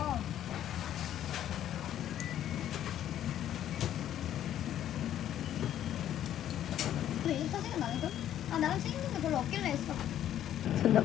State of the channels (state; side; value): quieter; right; 11.3 dB